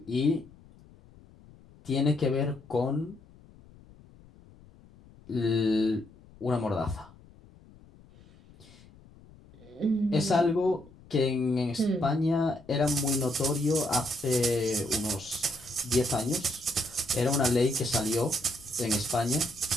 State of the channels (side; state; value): left; noise; rumble, 24 dB below the sound